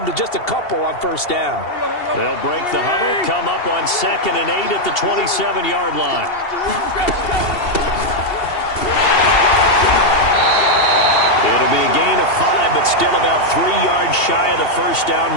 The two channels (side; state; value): right; late; 2.7 ms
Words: to just a couple on first down. They'll break the huddle, come up on 2nd and 8 at the 27-yard line. It'll be a gain of 5, but still about 3 yards shy of the first down